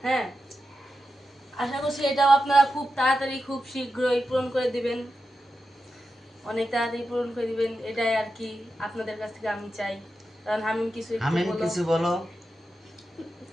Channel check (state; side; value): normal; both; correlation 0.89